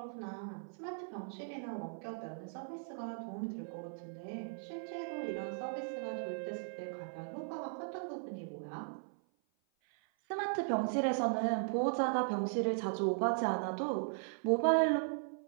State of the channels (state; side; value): silent; left; 52 dB below the other